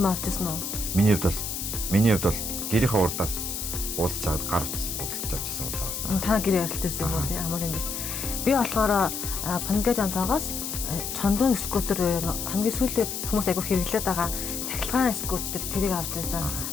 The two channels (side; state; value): left; noise; hiss, 4 dB below the sound